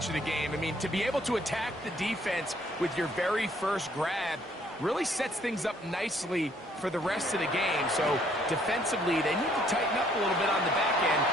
of the game. I mean, to be able to attack the defense with your very first grab really sets things up nicely for the rest of the game. So defensively, they need to tighten up a little bit on the back end.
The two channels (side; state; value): both; normal; correlation 0.64